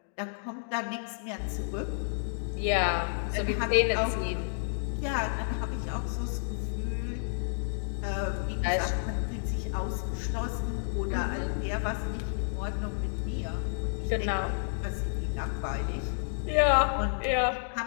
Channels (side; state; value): right; silent; digital silence